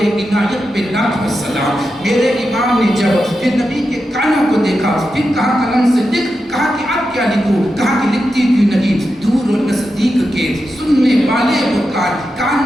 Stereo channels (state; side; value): normal; both; correlation 0.89